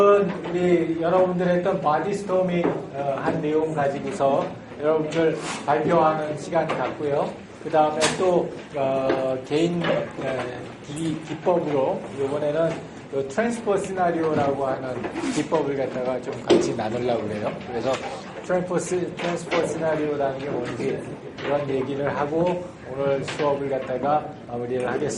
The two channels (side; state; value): both; identical; correlation 1.00